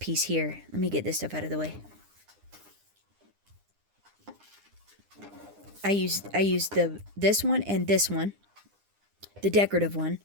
here. Let me get this stuff out of the way. I use this one and this one, the decorative one,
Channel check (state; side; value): late; left; 9.9 ms